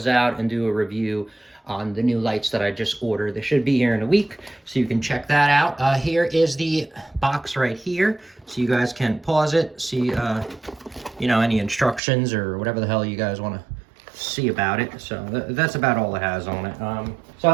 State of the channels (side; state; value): left; drops out; at 12.0 s